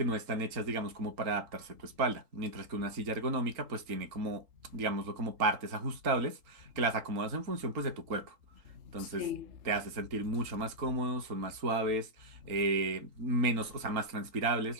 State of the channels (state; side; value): late; left; 3.8 ms